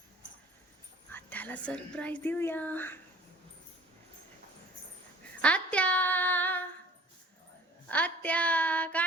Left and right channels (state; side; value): normal; both; correlation 0.49